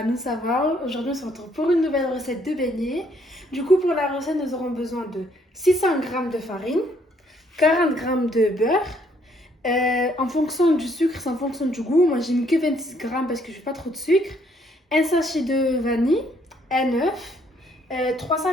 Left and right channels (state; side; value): normal; both; correlation 0.67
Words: nous ça va. Aujourd'hui, on se retrouve pour une nouvelle recette de beignets. Du coup, pour la recette, nous aurons besoin de 600 g de farine, 40 g de beurre. En fonction du sucre, c'est en fonction du goût. Moi, j'ai mis que 26 g parce que je n'ai pas trop de sucre. Un sachet de vanille, un œuf,